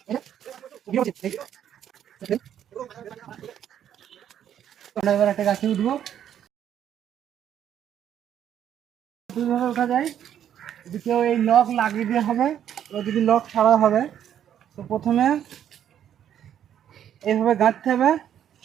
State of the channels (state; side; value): quieter; left; 9.9 dB